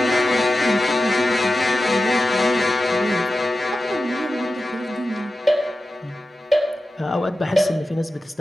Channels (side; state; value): both; normal; correlation 0.93